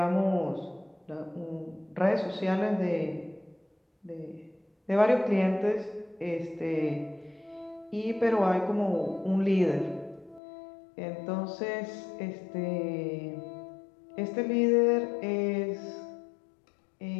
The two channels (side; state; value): right; drops out; at 10.4 s